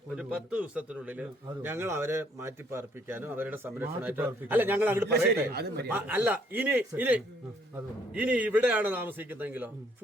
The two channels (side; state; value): both; normal; correlation 0.65